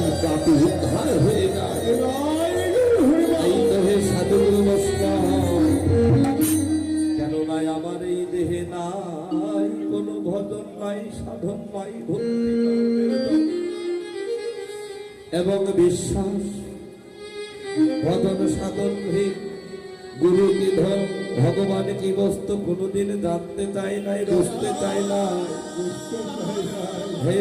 পাপী উদ্ধার হয়ে যায়। এই দেহে সাধুগুরু বৈষ্ণব, কেননা আমার এই দেহে নাই কোনো ভজন নাই, সাধন নাই, ভক্তি এবং বিশ্বাস। ভজন সাধন গুরু কি ধন, ভগবান কি বস্তু কোনদিন জানতে চাই নাই, বুঝতে চাই না। হে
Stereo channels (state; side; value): identical; both; correlation 1.00